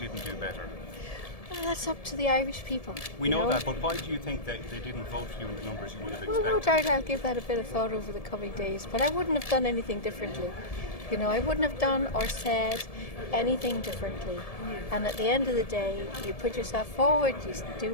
do better? Well, that's up to the Irish people. We know that, but why do you think that they didn't vote for you in the numbers you would have expected? Well, no doubt I'll give that a bit of thought over the coming days, but I wouldn't have done anything differently. I wouldn't have done or said anything differently. And at the end of the day, you put yourself forward, you do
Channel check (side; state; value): right; late; 1.7 ms